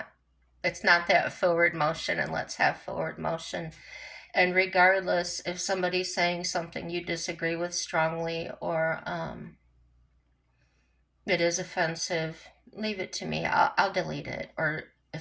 that forward motion, and let's have forward motion. And regardless if somebody's saying something you disagree with strongly or it is offensive, leave it to me. I'll delete it. Or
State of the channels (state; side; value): identical; both; correlation 1.00